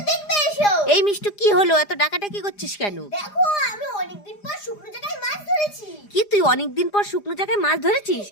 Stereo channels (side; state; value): right; late; 4.9 ms